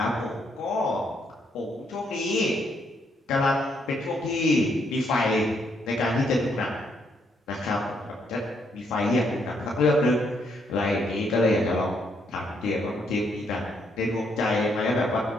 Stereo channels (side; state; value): both; normal; correlation 0.74